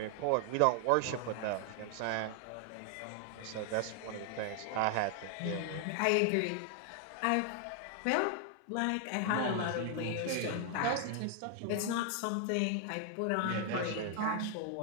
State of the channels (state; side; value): different; both; correlation 0.00